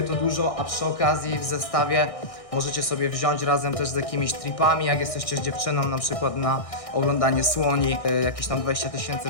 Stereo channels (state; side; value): late; right; 1.6 ms